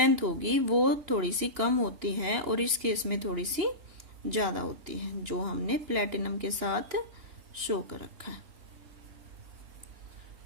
होगी वो थोड़ी सी कम होती है और इस केस में थोड़ी सी ज्यादा होती है, जो हमने प्लेटिनम के साथ शो कर रखा है।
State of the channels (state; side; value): late; left; 2.9 ms